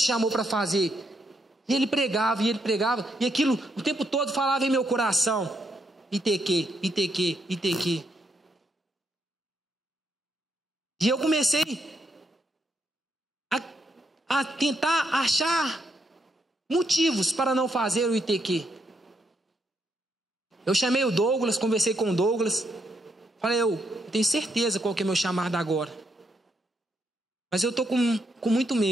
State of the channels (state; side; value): normal; both; correlation 0.77